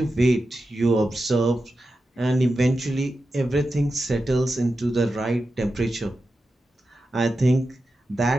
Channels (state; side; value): normal; both; correlation 0.91